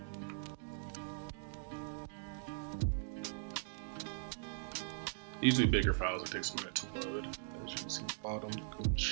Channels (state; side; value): silent; left; digital silence